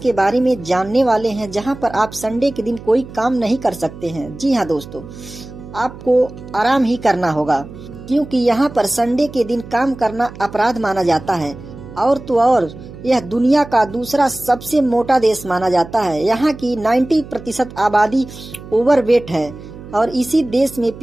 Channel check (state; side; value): noise; right; hum, 15 dB below the sound